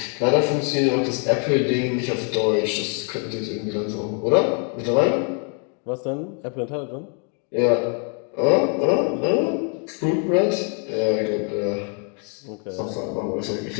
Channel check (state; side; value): quieter; right; 40.0 dB